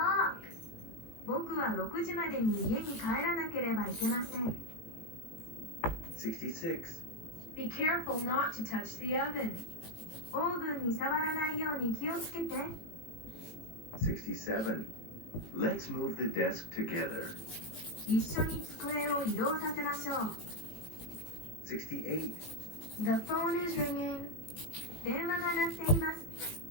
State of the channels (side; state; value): right; late; 18 ms